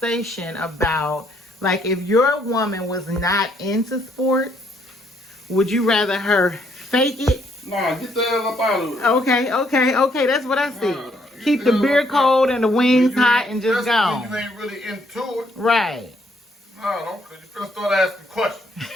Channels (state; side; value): normal; both; correlation 0.69